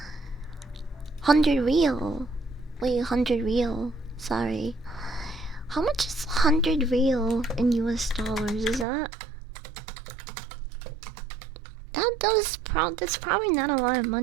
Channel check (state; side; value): drops out; left; at 8.8 s